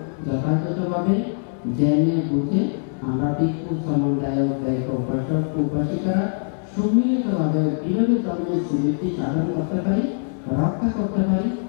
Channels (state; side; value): silent; right; digital silence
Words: যথাযথভাবে জেনে বুঝে আমরা ভিক্ষু সমন্বয়ক গায়ক উপাসক উপাসিকারা সম্মিলিতভাবে কীভাবে ধর্মের সুবৃদ্ধি সাধন করতে পারি, রক্ষা করতে পারি,